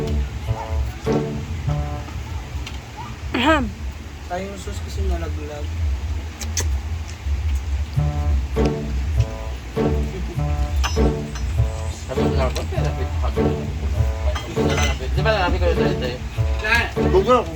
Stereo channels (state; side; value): identical; both; correlation 1.00